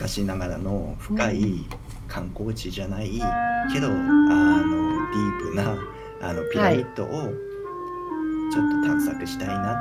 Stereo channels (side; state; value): both; identical; correlation 1.00